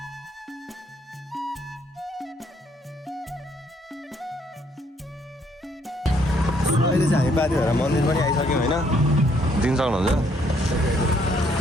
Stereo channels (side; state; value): both; normal; correlation 0.68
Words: अहिले चाहिँ हामी पाथिभरा मन्दिर पनि आइसक्यौँ होइन दिन सक्नुहुन्छ